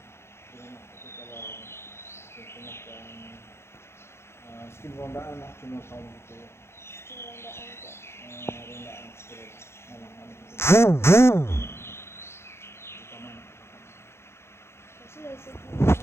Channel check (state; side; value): late; right; 0.12 ms